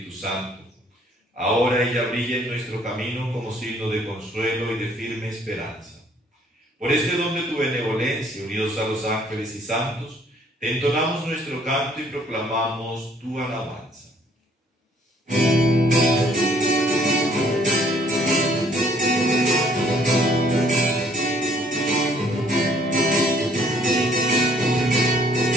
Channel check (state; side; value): normal; both; correlation 0.62